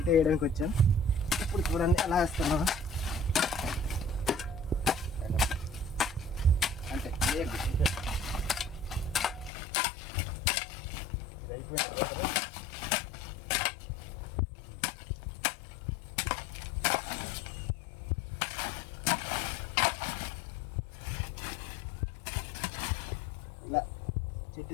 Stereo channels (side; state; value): right; drops out; at 9.5 s